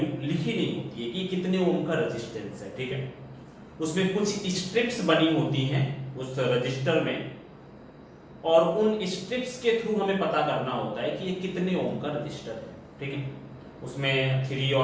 लिखी नहीं होती है कि कितने ओम का रेजिस्टेंस है। ठीक है, उसमें कुछ स्ट्रिप्स बनी होती हैं उस रजिस्टर में और उन स्ट्रिप्स के थ्रू हमें पता करना होता है कि ये कितने ओम का रजिस्टर है। ठीक है, उसमें 3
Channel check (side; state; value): both; identical; correlation 1.00